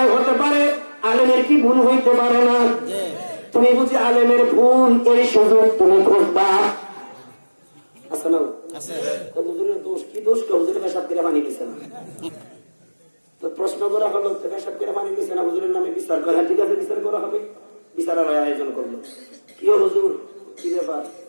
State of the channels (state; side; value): inverted; both; correlation -1.00